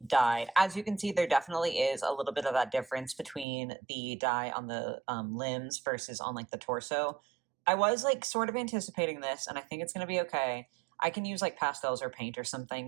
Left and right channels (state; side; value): drops out; left; at 3.5 s